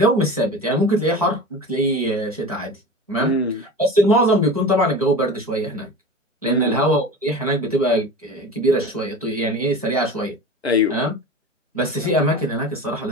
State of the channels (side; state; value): both; normal; correlation 0.33